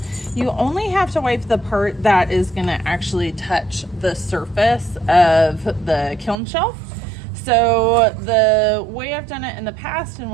You only have to wipe the part that is going to actually touch the surface of the kiln shelf. So the way I've done it in the past, and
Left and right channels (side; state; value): left; drops out; at 6.4 s